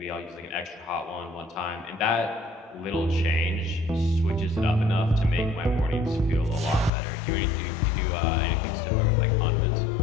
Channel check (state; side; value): drops out; right; at 6.9 s